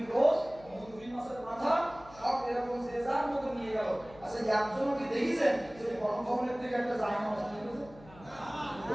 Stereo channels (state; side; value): noise; left; hum, 21 dB below the sound